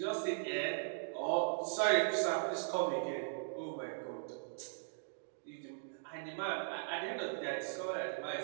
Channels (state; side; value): silent; left; digital silence